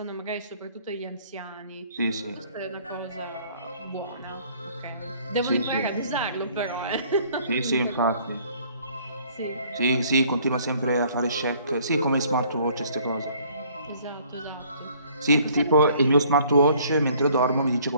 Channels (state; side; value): inverted; both; correlation -0.58